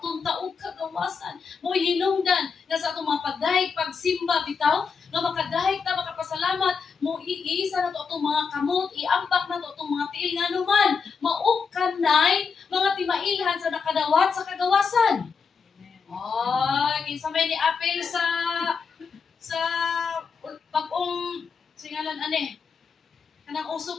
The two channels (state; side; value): quieter; right; 5.6 dB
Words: og kagawasan. Mo hinungdan na sa atong mga pagdahig, pagsimba bitaw, nga makadahig ta, makapasalamat, mo iisa na to atong mga kamot, iambak na to atong mga tiil nga naman, maugkanay, mga timailhan sa nakadawat sa kagawasan. Ay, kinsa may ni apel sa pag-ong singalan ane. Kanang uso